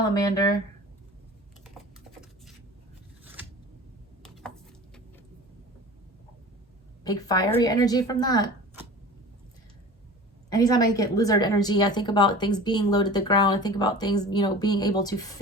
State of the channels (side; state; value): both; normal; correlation 0.38